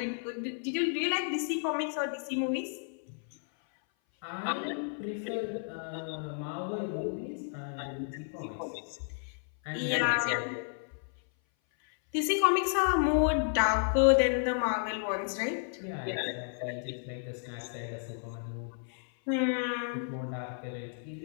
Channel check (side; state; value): right; silent; 56 dB below the other